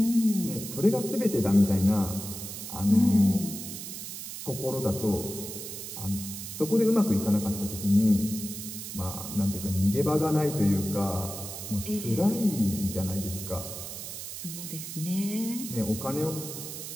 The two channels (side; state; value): right; noise; hiss, 9 dB below the sound